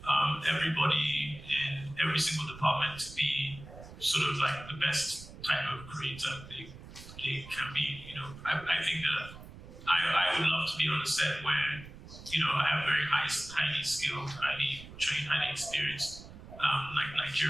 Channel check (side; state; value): right; noise; rumble, 16 dB below the sound